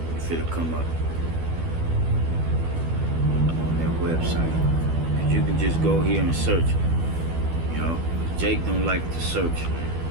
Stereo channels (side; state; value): left; late; 12 ms